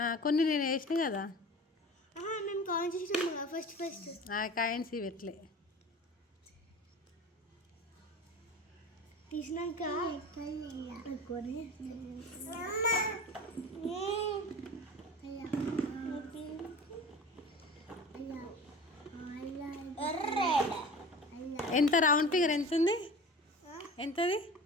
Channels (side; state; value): both; normal; correlation 0.37